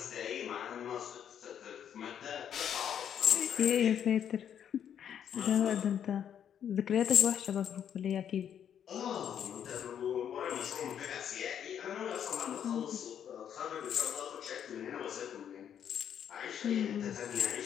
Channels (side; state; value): right; quieter; 9.0 dB